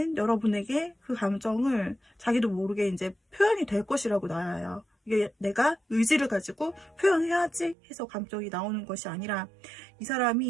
여러분에게 그 감정을 자기도 모르게 이제 표현이 될 것이라고 나와요. 이게 내가 의지를 가지고 표현해야지 해서 감정이 나오는 것이 아니라, 이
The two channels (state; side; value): drops out; left; at 7.8 s